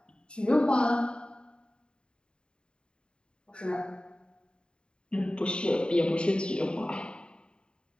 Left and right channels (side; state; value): right; late; 0.051 ms